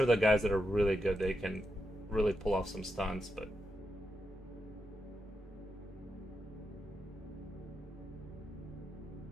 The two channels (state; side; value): normal; both; correlation 0.85